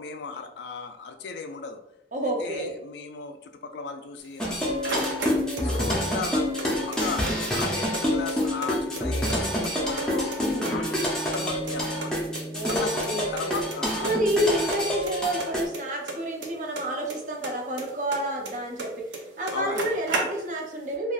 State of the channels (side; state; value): both; normal; correlation 0.37